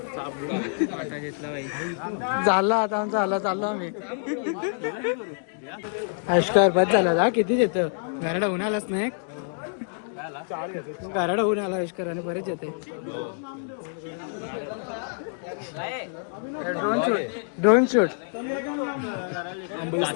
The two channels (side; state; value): right; silent; digital silence